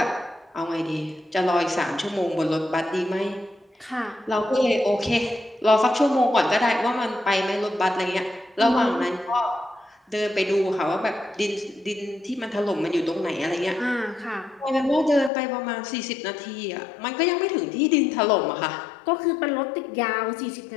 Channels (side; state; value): right; drops out; at 15.3 s